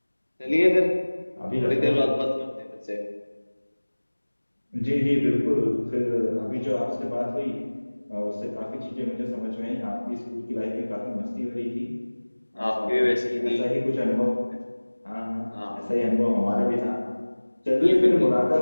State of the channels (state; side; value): inverted; both; correlation -1.00